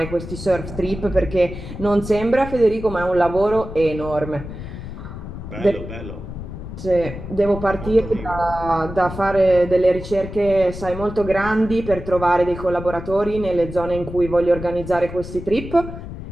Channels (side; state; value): left; noise; rumble, 10 dB below the sound